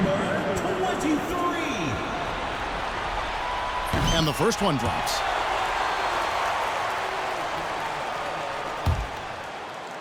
23. And the first one drops.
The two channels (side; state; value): both; identical; correlation 1.00